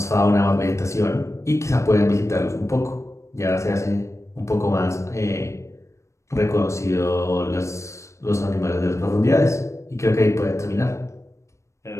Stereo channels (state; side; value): late; right; 0.14 ms